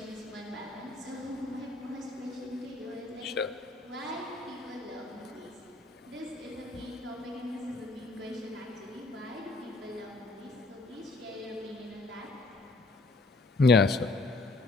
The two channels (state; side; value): quieter; right; 3.2 dB